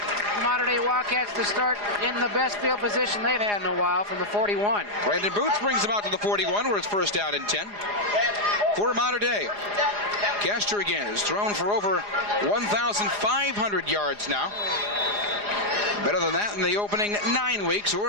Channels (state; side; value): late; left; 4.9 ms